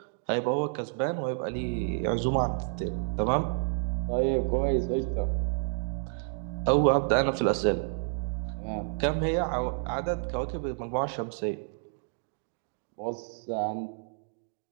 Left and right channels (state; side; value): silent; left; digital silence